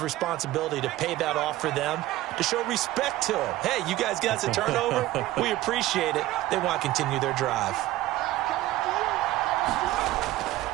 to pay that off for them, to show respect to them. Hey, you guys got us a turnover? We appreciate it. They want to continue their drive.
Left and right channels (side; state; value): left; quieter; 16.1 dB